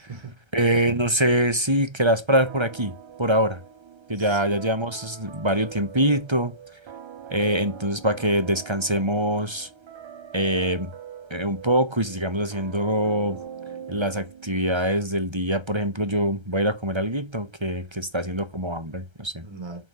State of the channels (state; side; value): late; left; 1.3 ms